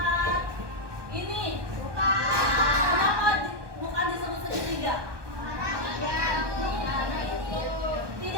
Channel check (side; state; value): left; late; 1.2 ms